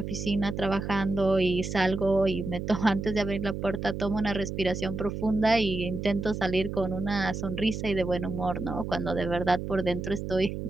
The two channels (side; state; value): right; noise; hum, 5 dB below the sound